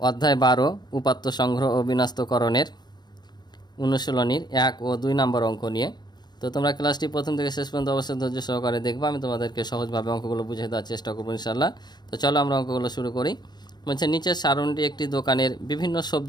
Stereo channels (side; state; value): right; late; 0.20 ms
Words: অধ্যায় 12 উপাত্ত সংগ্রহ ও বিন্যস্তকরণের অনুশীলনীর 1 ও 2 নম্বর অঙ্ক নিয়ে। তো তোমরা ক্লাসটি প্রথম থেকে শেষ পর্যন্ত অবশ্যই ধৈর্য সহকারে দেখবা। আমি তোমাদেরকে সহজভাবে অঙ্কগুলো বুঝিয়ে দেওয়ার চেষ্টা করবো ইনশাআল্লাহ। তো চলো আমরা অঙ্কগুলো শুরু করি। বলছে, নিচের সারণীটি একটি দোকানের বিভিন্ন